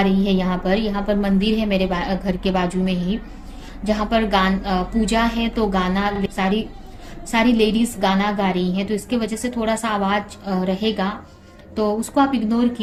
रही है। यहाँ पर मंदिर है मेरे घर के बाजू में ही, जहाँ पर पूजा है, तो गाना सारी सारी लेडीज गाना गा रही हैं, तो इसके वजह से थोड़ा सा आवाज रहेगा। तो उसको आप इग्नोर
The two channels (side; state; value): both; identical; correlation 1.00